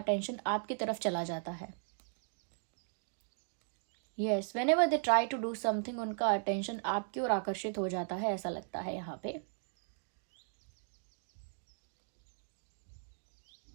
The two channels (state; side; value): silent; left; digital silence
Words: आपकी तरफ चला जाता है। Yes, whenever they try to do something, उनका अटेंशन आपकी ओर आकर्षित हो जाता है, ऐसा लगता है यहाँ पे।